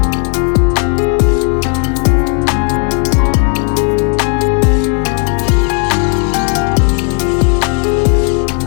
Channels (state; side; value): quieter; right; 38.5 dB